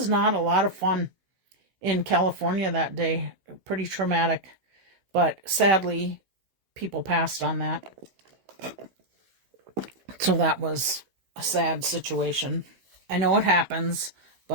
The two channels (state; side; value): late; left; 15 ms